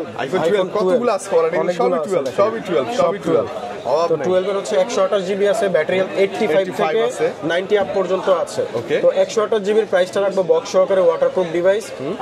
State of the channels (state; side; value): identical; both; correlation 1.00